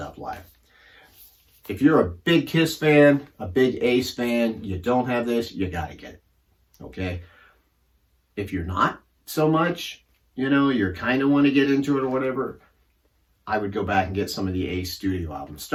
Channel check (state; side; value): identical; both; correlation 1.00